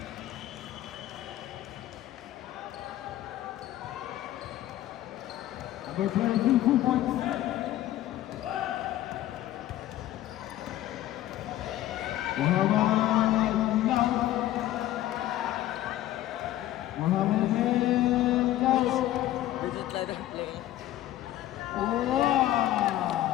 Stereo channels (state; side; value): quieter; right; 14.0 dB